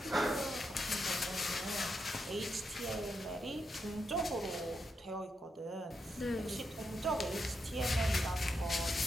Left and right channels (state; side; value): normal; both; correlation 0.83